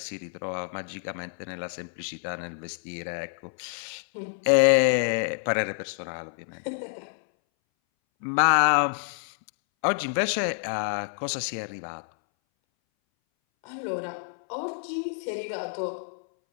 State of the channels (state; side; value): silent; right; 59 dB below the other